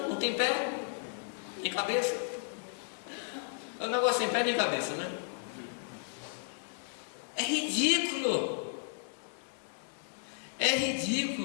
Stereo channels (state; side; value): silent; right; 55 dB below the other